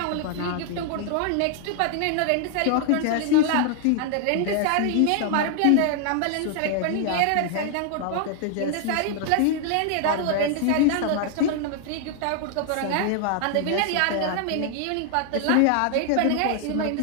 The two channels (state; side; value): different; both; correlation 0.00